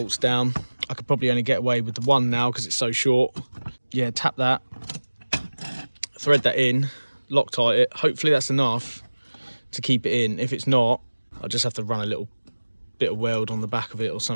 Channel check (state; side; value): inverted; both; correlation -1.00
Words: down. I could probably only get away with the one now because it's so short. Yeah, tap that, thread that in, Loctite it. Hopefully that's enough to keep it in. If it's not, I'll just have to run a little bit of weld on the back of it or